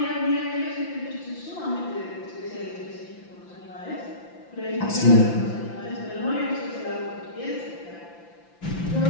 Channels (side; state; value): right; late; 5.8 ms